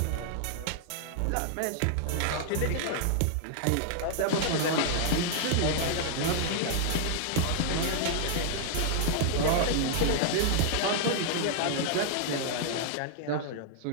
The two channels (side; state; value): both; different; correlation -0.01